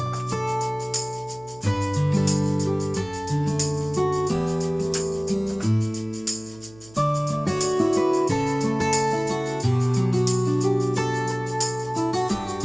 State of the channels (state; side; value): noise; right; hum, 24 dB below the sound